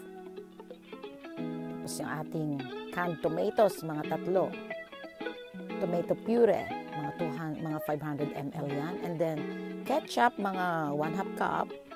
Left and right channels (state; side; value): identical; both; correlation 1.00